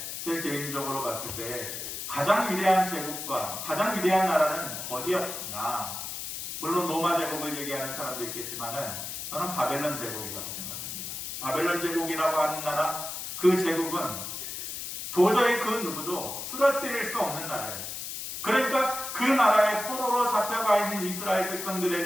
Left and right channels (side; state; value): left; noise; hiss, 6 dB below the sound